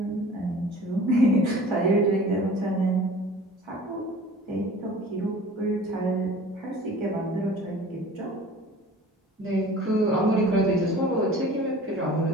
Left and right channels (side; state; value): both; normal; correlation 0.44